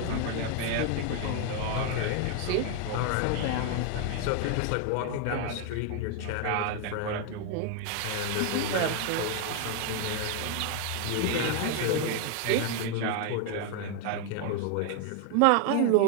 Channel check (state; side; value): different; both; correlation 0.01